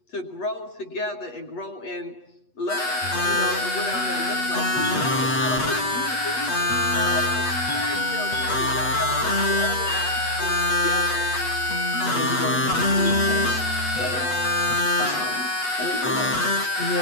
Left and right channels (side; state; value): right; late; 8.2 ms